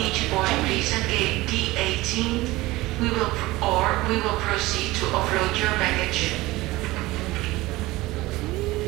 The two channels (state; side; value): quieter; left; 19.4 dB